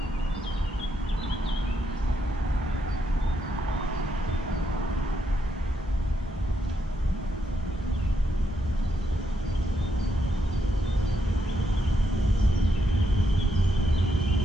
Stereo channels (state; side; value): normal; both; correlation 0.80